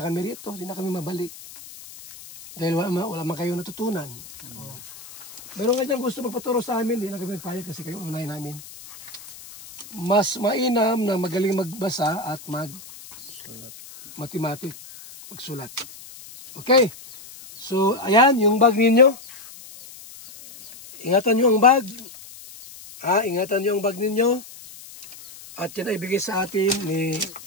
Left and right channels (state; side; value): noise; left; hiss, 17 dB below the sound